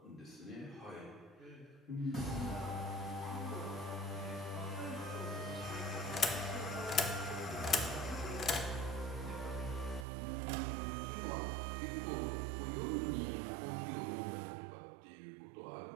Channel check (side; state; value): left; drops out; at 10.1 s